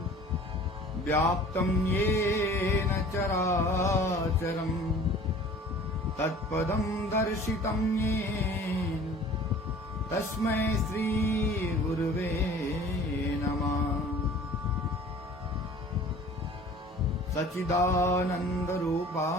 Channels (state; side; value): normal; both; correlation 0.47